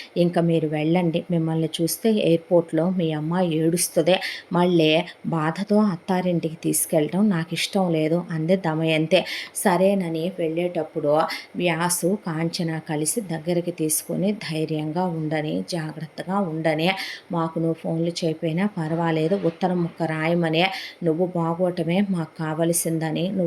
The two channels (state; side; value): identical; both; correlation 1.00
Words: ఇంకా మీరు వెళ్ళండి, మిమ్మల్ని చూస్తే ఎయిర్పోర్ట్లో మీ అమ్మాయి ఏడుస్తుంది, మళ్ళీ బాధతో అత్తారింటికి తీసుకెళ్ళడం నాకు ఇష్టం లేదు అంది దమయంతి. సరేనని వెళ్ళేటప్పుడు వ్యాసు కాంచన కలిసి దగ్గరికి తీసుకొని ధైర్యంగా ఉండని, జాగ్రత్త జాగ్రత్తగా ఉండని, మాకు నువ్వు ఫోన్లు చేయకపోయినా పర్వాలేదు, ఉత్తరం ముక్క రాయమని, నువ్వు బాగోవటమే మాకు కావలసిందని,